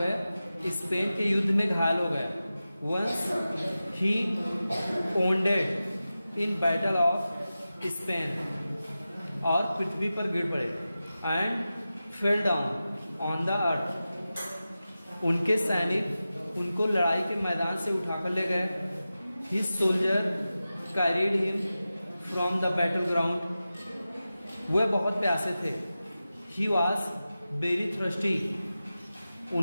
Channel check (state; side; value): inverted; both; correlation -0.94